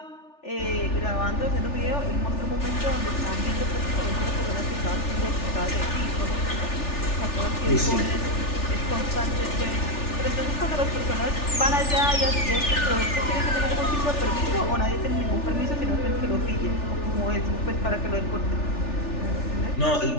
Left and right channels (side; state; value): right; late; 3.4 ms